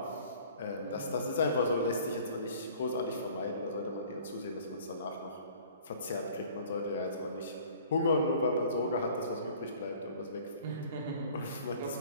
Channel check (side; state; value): both; inverted; correlation -0.50